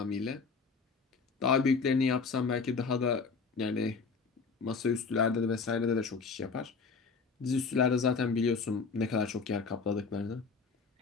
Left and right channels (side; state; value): right; quieter; 4.9 dB